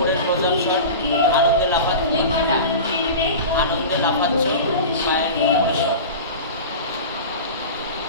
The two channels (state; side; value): inverted; both; correlation -0.31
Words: প্রদর্শন, আনন্দে লাফাচ্ছে, আনন্দে লাফাচ্ছে পায়ের উপরের শট।